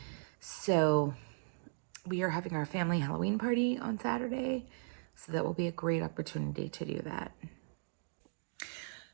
So we are having our family Halloween party on Saturday. So that will be a great opportunity to do that.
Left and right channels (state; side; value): silent; left; digital silence